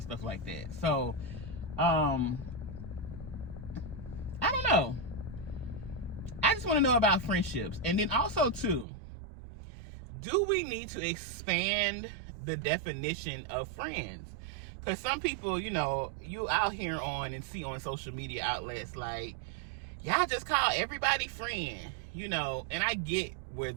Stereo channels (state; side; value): drops out; left; at 8.8 s